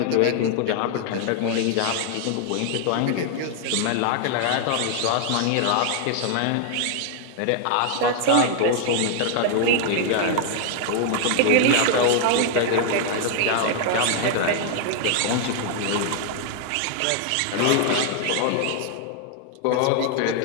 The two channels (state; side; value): different; both; correlation 0.00